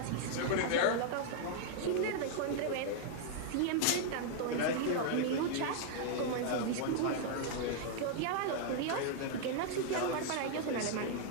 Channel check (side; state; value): both; different; correlation -0.01